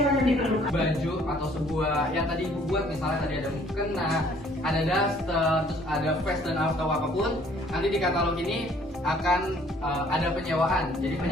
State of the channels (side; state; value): both; normal; correlation 0.59